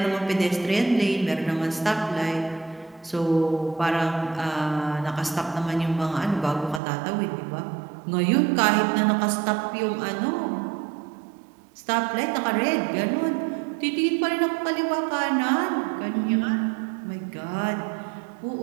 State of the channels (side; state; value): left; drops out; at 6.8 s